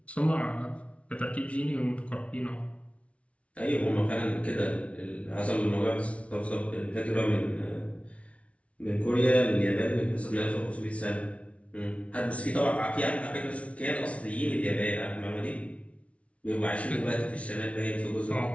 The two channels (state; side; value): late; right; 0.063 ms